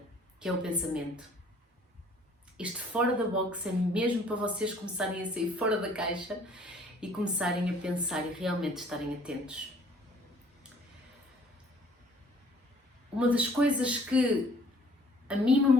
que é o pensamento. Este fora da box é mesmo para vocês começarem a sair fora da caixa e começarem a pensar e realmente estarem atentos. Uma das coisas que a mim me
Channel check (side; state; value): both; normal; correlation 0.57